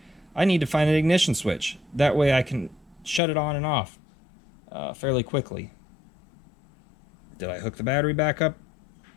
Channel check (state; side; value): drops out; right; at 3.2 s